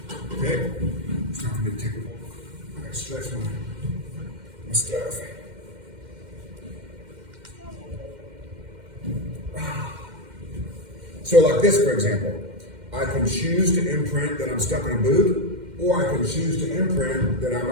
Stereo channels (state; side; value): late; left; 2.1 ms